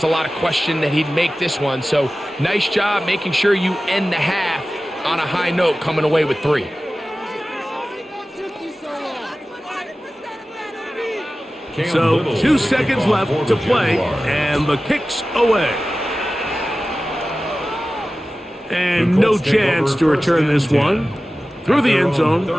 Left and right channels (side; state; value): both; normal; correlation 0.95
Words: a lot of question that he'd make this one. So nice job making sure you end the half on a high note, coming away with 3. So 2 seconds left to play, and the kick's away. And no chance to return this one through the end zone